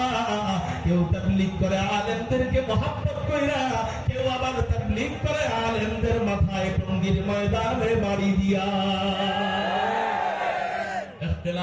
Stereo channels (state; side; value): identical; both; correlation 1.00